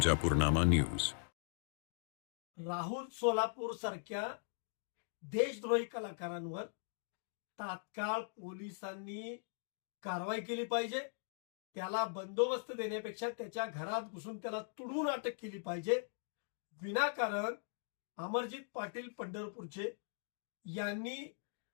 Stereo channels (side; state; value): right; silent; digital silence